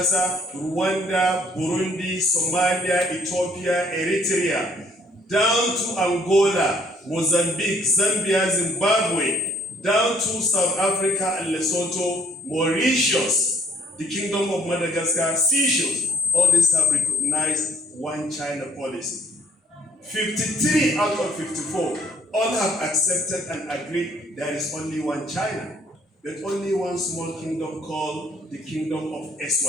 Rwanda, Burundi, Somalia, Ethiopia, Eritrea, down to Angola, Mozambique, Zambia, Zimbabwe, down to South Africa and Lesotho, Mauritius, the Kingdom of Madagascar, Seychelles. All these have recognized one China policy. 53 out of 54 all have accepted and agreed there is only one China, but only one small kingdom called the Kingdom of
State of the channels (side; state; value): both; normal; correlation 0.62